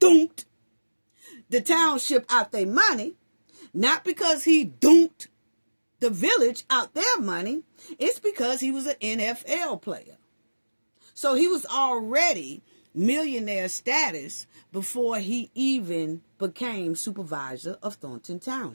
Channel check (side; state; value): both; inverted; correlation -1.00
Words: the township out their money, not because he dunked the village out their money, it's because he was an NFL player. So he was already millionaire status before he even became supervisor of Thornton